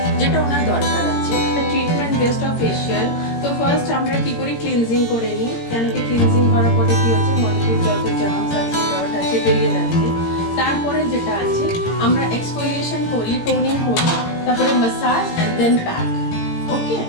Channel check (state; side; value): late; right; 17 ms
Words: যেটা ওনার দরকার আছে। Treatment based of facial. তো ফার্স্ট আমরা কি করি, ক্লিনজিং করে নিই, কেন কি ক্লিনজিং করার পরে কি হচ্ছে, মডেলের যত জার্মস আছে ডট আছে বেরিয়ে যাচ্ছে। তারপরে যেটা আছে আমরা এক্সফোলিয়েশন করি, টোনিং করি, তারপরে massage and then pack. Okay,